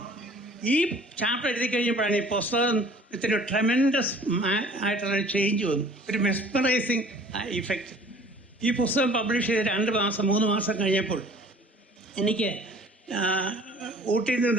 ഈ ചാപ്റ്റർ എഴുതി കഴിഞ്ഞപ്പോഴാണ് ഈ പുസ്തകത്തിന് ട്രെമൻഡസ് ആയിട്ടുള്ള ചേഞ്ച് വന്നു, ഒരു മെസ്മറൈസിങ് ഇഫക്റ്റ്. ഈ പുസ്തകം പബ്ലിഷ് ചെയ്ത് 2-3 മാസം കഴിഞ്ഞപ്പോൾ എനിക്ക് ഊട്ടിയിൽ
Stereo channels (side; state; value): both; normal; correlation 0.50